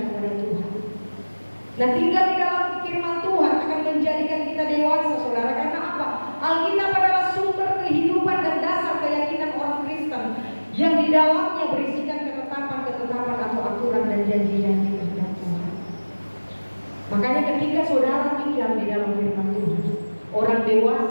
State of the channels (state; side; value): inverted; both; correlation -1.00